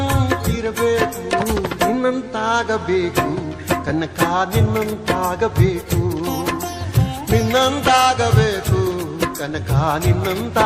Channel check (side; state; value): both; identical; correlation 1.00